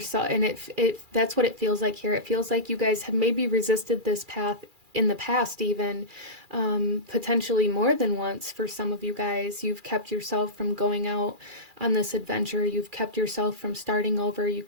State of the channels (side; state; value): left; late; 2.4 ms